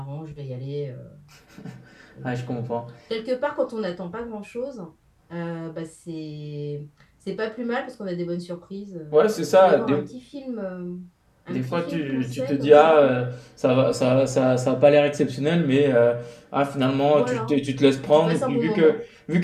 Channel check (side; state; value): both; identical; correlation 1.00